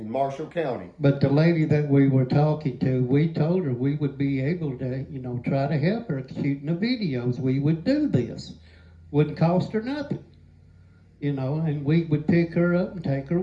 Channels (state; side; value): identical; both; correlation 1.00